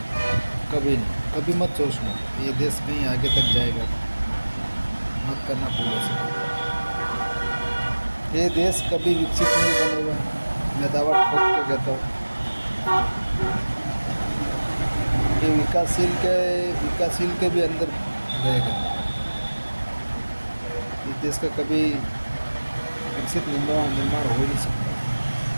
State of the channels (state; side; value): inverted; both; correlation -1.00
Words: कभी नहीं, कभी मत सोचना ये देश कहीं आगे तक जाएगा, मत करना भूल से। ये देश कभी विकसित नहीं बनेगा, मैं दावा ठोक के कहता हूँ। ये विकासशील के भी अंदर रहेगा। इस देश का कभी विकसित निर्माण हो ही नहीं सकता।